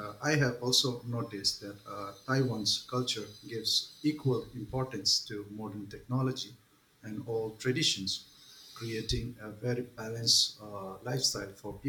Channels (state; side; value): identical; both; correlation 1.00